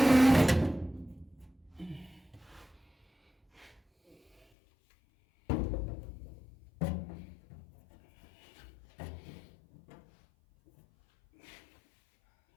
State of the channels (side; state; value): right; drops out; at 4.5 s